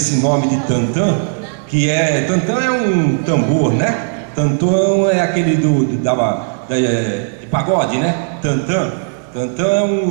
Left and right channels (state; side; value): silent; left; digital silence